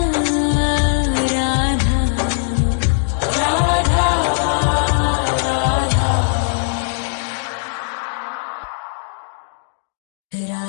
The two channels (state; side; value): silent; right; digital silence